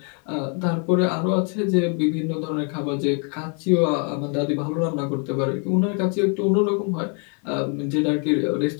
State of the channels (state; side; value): quieter; right; 38.4 dB